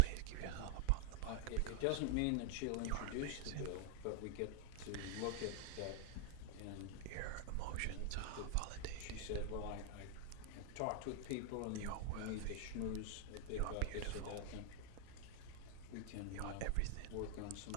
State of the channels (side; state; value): both; different; correlation 0.00